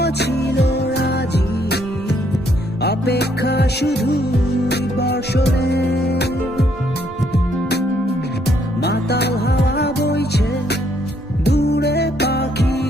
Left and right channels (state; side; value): normal; both; correlation 0.70